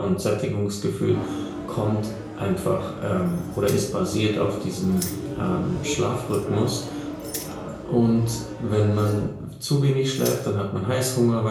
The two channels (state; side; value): identical; both; correlation 1.00